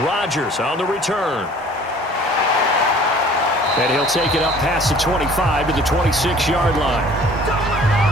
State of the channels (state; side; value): normal; both; correlation 0.51